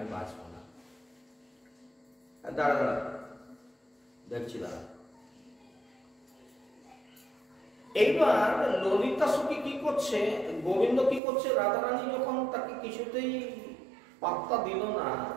বাঁচবো না। দাঁড়া দাঁড়া দেখছি দাঁড়া। এইবার ললিতা সখী কি করছে, গোবিন্দ কি করছে, রাধারানী যখন তাকে কিছুতেই পাত্তা দিল না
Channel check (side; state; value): left; drops out; at 11.2 s